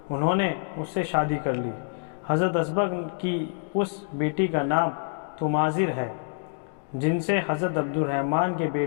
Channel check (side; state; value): right; silent; digital silence